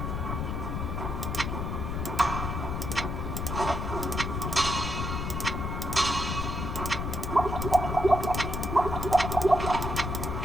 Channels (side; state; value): left; noise; rumble, 3 dB below the sound